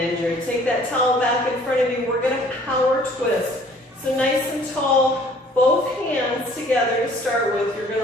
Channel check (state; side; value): normal; both; correlation 0.55